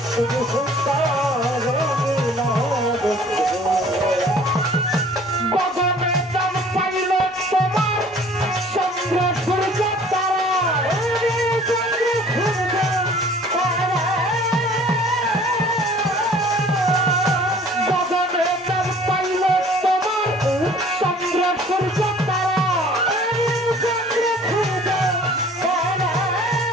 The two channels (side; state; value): both; normal; correlation 0.51